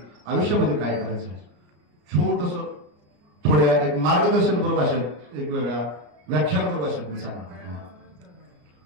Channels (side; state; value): left; late; 34 ms